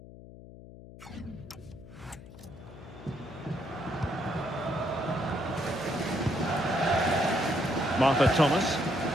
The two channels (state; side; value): noise; left; hum, 17 dB below the sound